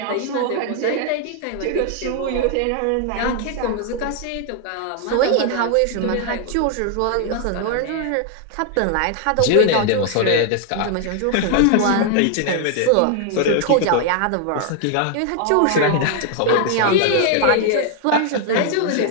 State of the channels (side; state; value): both; different; correlation 0.00